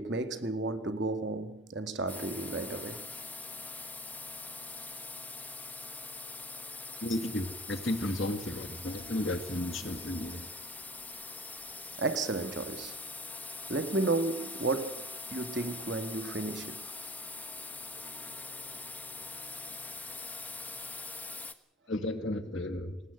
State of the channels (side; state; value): both; normal; correlation 0.41